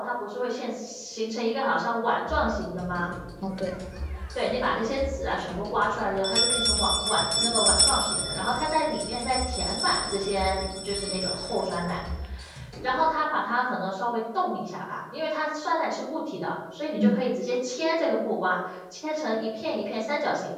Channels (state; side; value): identical; both; correlation 1.00